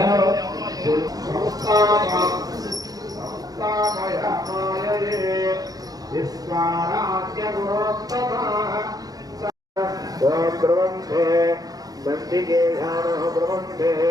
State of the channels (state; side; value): late; left; 0.18 ms